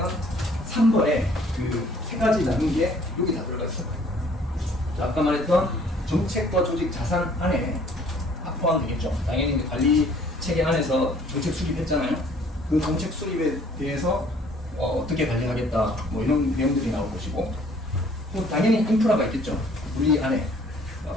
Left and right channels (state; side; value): normal; both; correlation 0.58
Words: 3번에 그 세 가지 나눈 게 여기 다 들어가 있어요. 자, 아까 말했던 정책과 조직 자산 안에 포함되겠죠. 당연히 이제 관리 체계 안에서 정책 수립했잖아요. 그 정책 수립에 대해서 어떻게 관리하겠다, 뭐 이런 내용들이 나올 것이고, 또 당연히 인프라가 있겠죠. 우리 안에